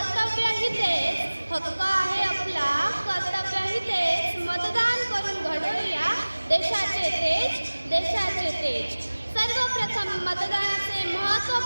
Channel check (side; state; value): both; inverted; correlation -1.00